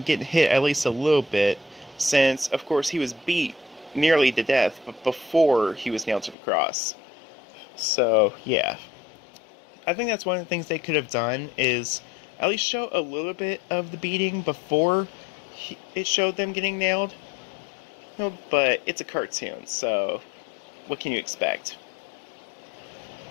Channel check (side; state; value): right; drops out; at 6.4 s